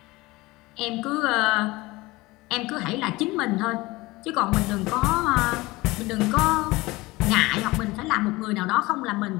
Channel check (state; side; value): quieter; right; 21.1 dB